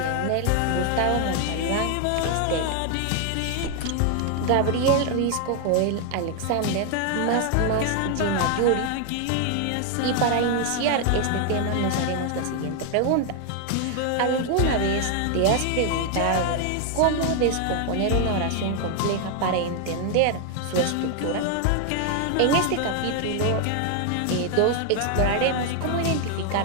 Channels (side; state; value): both; different; correlation 0.00